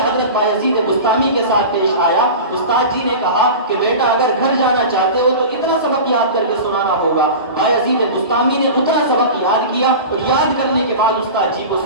بایزید بستامی کے ساتھ پیش آیا۔ استاد جی نے کہا کہ بیٹا اگر گھر جانا چاہتے ہو تو اتنا سبق یاد کر کے سنانا ہوگا۔ بایزید بستامی نے اتنا سبق یاد کیا اور یاد کرنے کے بعد استاد جی کو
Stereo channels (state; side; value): inverted; both; correlation -0.31